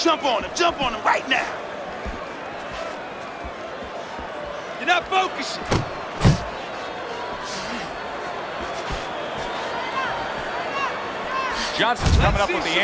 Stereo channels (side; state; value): both; identical; correlation 1.00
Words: Jump on him right now. You're not focusing. Johnson's coming up with the